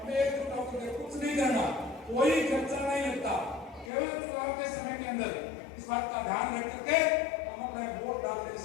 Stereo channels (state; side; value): drops out; right; at 3.9 s